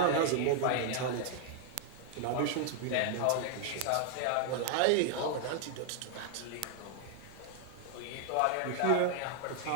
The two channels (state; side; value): different; both; correlation 0.00